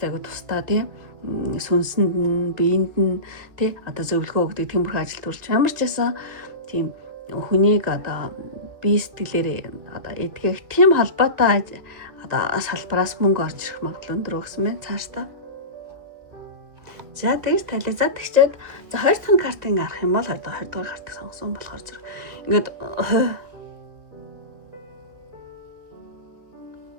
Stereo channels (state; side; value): late; left; 2.3 ms